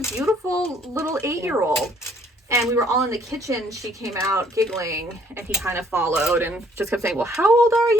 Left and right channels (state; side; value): normal; both; correlation 0.63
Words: beautiful little 8-year-old. And we were all in the kitchen. She came out giggling, and he kind of followed and just kept saying, "Well, how old are